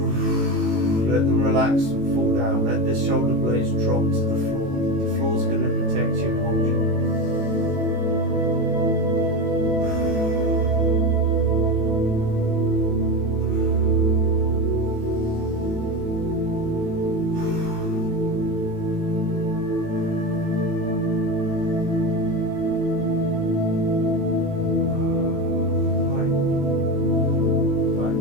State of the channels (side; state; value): left; late; 18 ms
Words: Let them relax and fall down. Let the shoulder blades drop to the floor. The floor's going to protect you and hold you.